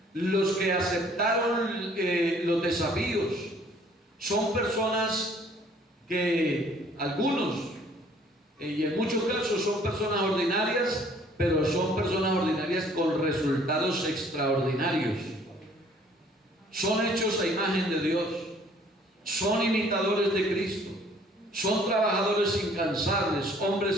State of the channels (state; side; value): normal; both; correlation 0.58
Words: los que aceptaron los desafíos, son personas que algunos, y en muchos casos son personas ordinarias, pero son personas ordinarias con resultados extraordinarios. Son hechos a imagen de Dios, son imitadores de Cristo, son trabajadores incansables,